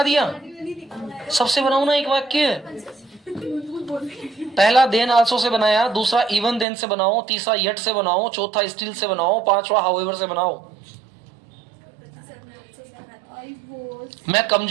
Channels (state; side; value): drops out; left; at 6.7 s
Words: दिया, सबसे बनाऊ ना एक वाक्य। पहला देन आल्सो से बनाया, दूसरा इवन देन से बनाओ, तीसरा येट से बनाओ, चौथा स्टिल से बनाओ, पांचवा हाउएवर से बनाओ। I was. मैं